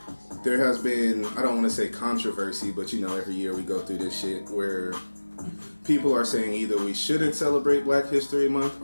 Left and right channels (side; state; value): both; inverted; correlation -1.00